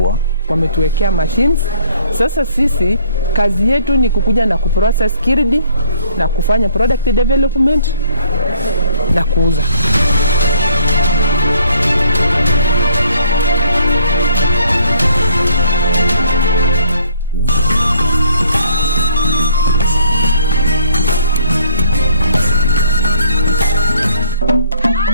Wametuwekea machines. Sasa sisi kazi yetu ni kukuja na kuprocess Kirdi na kufanya product development na kuuza.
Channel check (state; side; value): inverted; both; correlation -0.62